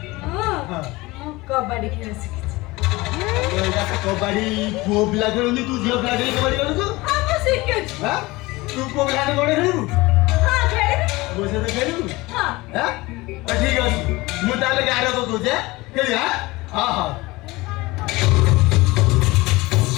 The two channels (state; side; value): quieter; right; 21.4 dB